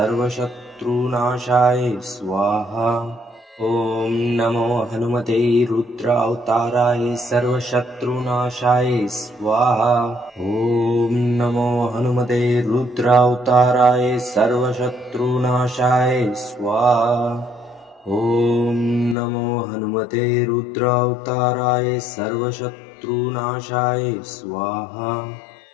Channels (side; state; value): right; drops out; at 19.2 s